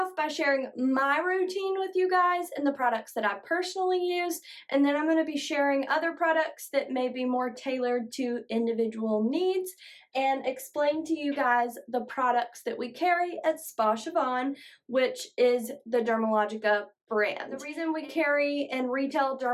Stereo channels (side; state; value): both; identical; correlation 1.00